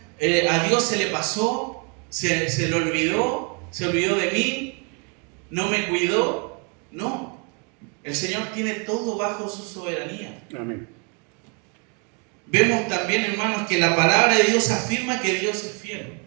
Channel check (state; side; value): quieter; left; 35.7 dB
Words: a Dios se le pasó, se le olvidó, se olvidó de mí, no me cuidó. No, el Señor tiene todo bajo su soberanía. Amén. Vemos también, hermanos, que la palabra de Dios afirma que Dios es fiel.